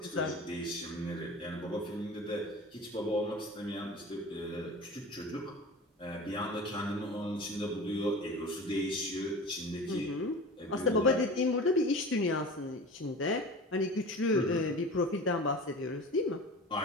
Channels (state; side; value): normal; both; correlation 0.35